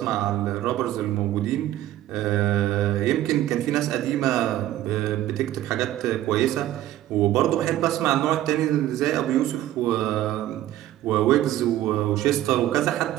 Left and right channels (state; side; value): quieter; left; 13.8 dB